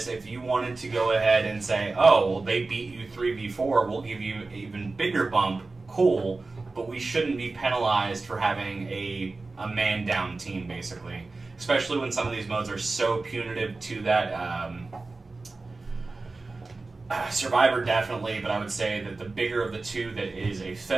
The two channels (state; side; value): quieter; left; 3.6 dB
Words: if you wanted to go ahead and say, oh, well, they beat you 3v4, we'll give you an even bigger bump, cool, but we shouldn't be penalized for having a man-down team, basically. Especially when some of these modes are so punitive to that. Survivor definitely, but I would say that the bigger of the two that is a